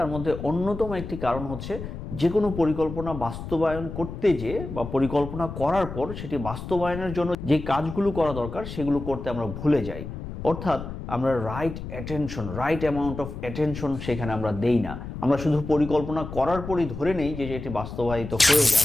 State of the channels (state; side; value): noise; left; rumble, 9 dB below the sound